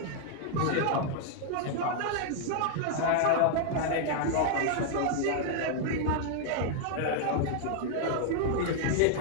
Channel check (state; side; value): different; both; correlation 0.00